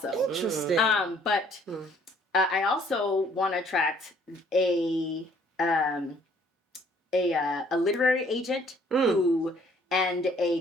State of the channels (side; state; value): both; normal; correlation 0.61